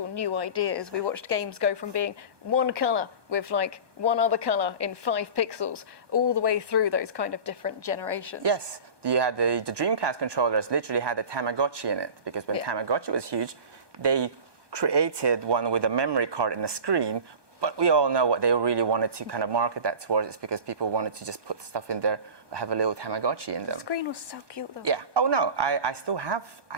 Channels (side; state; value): left; late; 1.2 ms